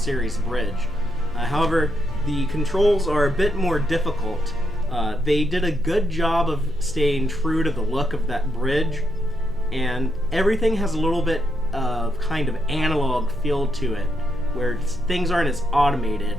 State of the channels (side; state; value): both; normal; correlation 0.81